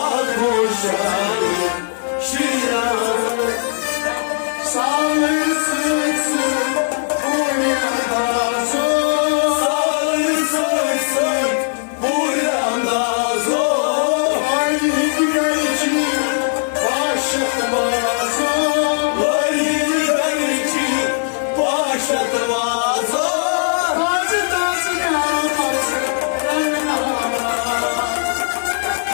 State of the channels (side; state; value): right; silent; digital silence